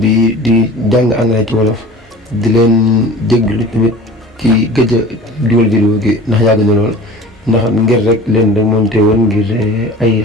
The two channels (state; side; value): normal; both; correlation 0.41